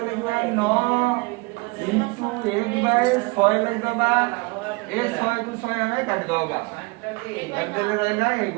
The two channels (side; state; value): left; quieter; 26.5 dB